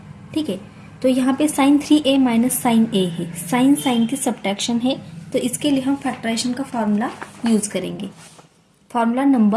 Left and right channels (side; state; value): both; identical; correlation 1.00